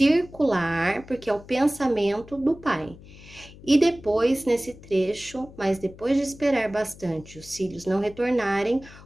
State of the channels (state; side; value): noise; left; hum, 20 dB below the sound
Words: porque é o pensamento do pai. E depois, nesse trecho, mas depois de esperar bastante os filhos não retornarem,